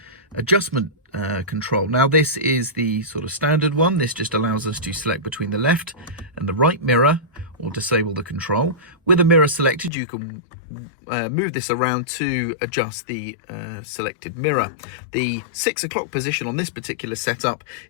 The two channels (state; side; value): drops out; right; at 9.9 s